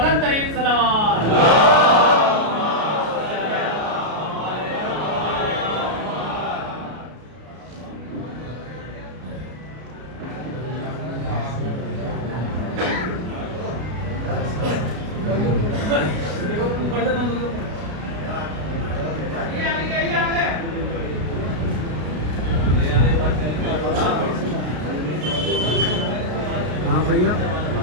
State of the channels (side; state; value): left; late; 33 ms